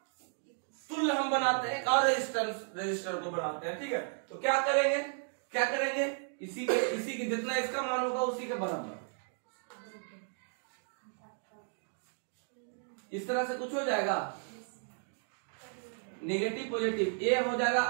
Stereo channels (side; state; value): left; silent; 55 dB below the other